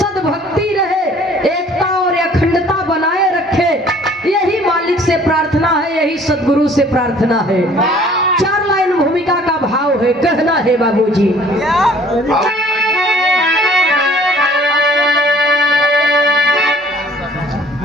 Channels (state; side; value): normal; both; correlation 0.55